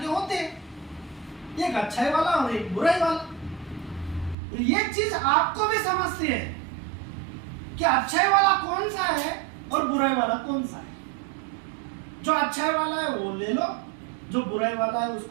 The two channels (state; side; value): drops out; left; at 4.4 s